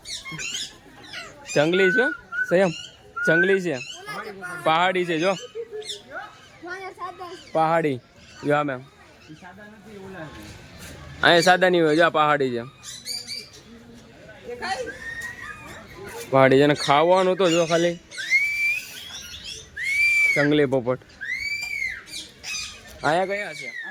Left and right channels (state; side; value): identical; both; correlation 1.00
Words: જંગલી છે સંયમ, જંગલી છે, પહાડી છે જો, પહાડી જો. મેમ અહીંયા સાદા નહીં હોય જો, પહાડી છે, પહાડી છે. ને ખાવાનું તો જો ખાલી જંગલી પોપટ. અહીંયા કયા છે?